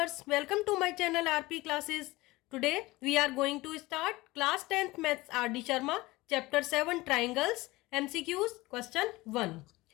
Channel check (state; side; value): quieter; right; 20.3 dB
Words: welcome to my channel RP Classes. Today we are going to start class 10th Maths RD Sharma chapter 7 Triangles MCQs question 1.